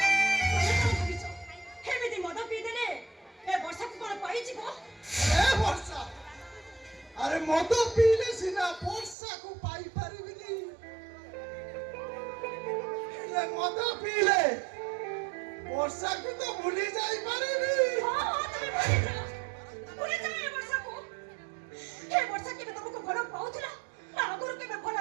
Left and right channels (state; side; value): drops out; left; at 9.2 s